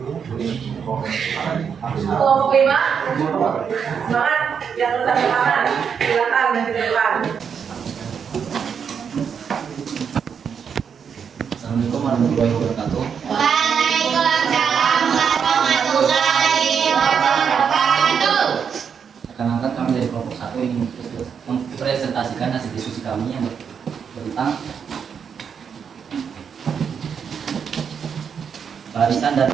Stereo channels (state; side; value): quieter; left; 7.0 dB